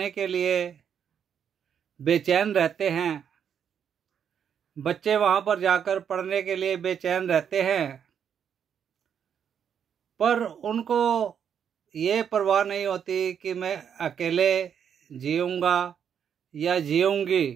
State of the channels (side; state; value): left; quieter; 8.0 dB